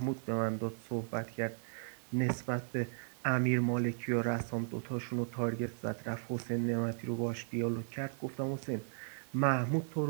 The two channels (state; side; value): silent; left; digital silence